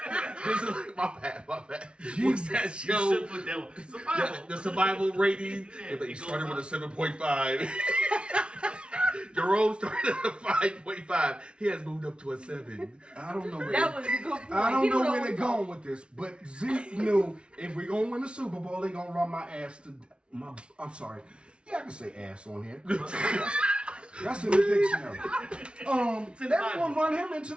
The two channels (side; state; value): left; late; 0.058 ms